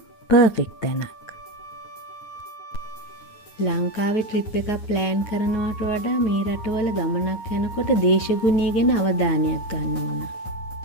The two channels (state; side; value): late; right; 9.5 ms